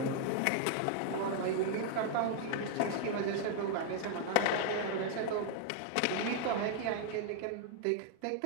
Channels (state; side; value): different; both; correlation 0.00